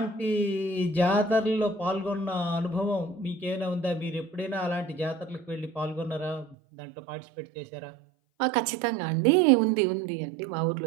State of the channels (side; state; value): left; drops out; at 6.6 s